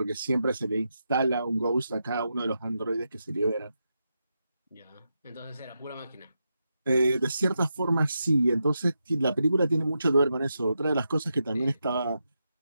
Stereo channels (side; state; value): both; inverted; correlation -0.86